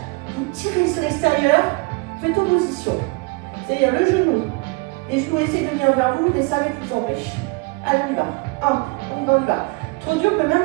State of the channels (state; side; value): quieter; left; 28.8 dB